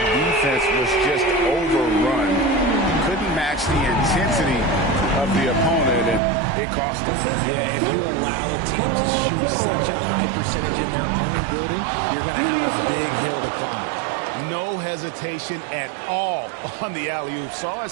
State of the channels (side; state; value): left; drops out; at 6.2 s